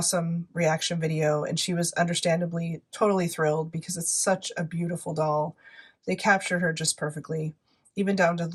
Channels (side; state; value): both; identical; correlation 1.00